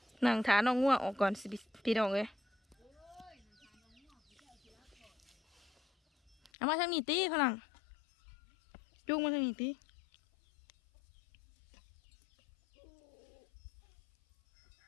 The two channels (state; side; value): drops out; right; at 6.5 s